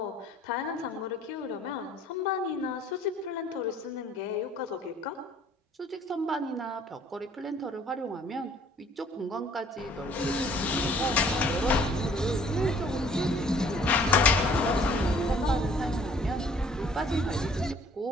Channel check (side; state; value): both; normal; correlation 0.57